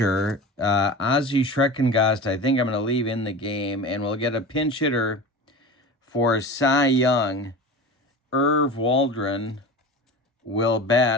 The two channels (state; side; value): normal; both; correlation 0.32